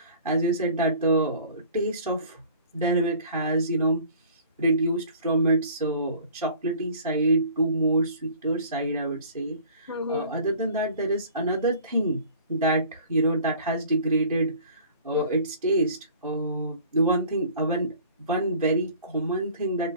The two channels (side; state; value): both; inverted; correlation -0.48